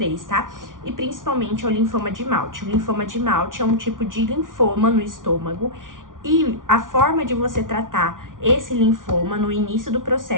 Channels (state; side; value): late; left; 0.89 ms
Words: tá? E principalmente ao linfoma de Malte. O linfoma de Malte é um tipo de linfoma no estômago e a forma de você tratar esse linfoma no início do